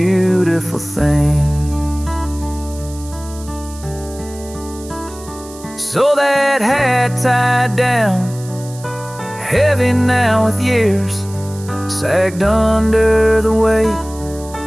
thing. So that hat tied down, heavy now with years, sagged under the weight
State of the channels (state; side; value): noise; right; hiss, 18 dB below the sound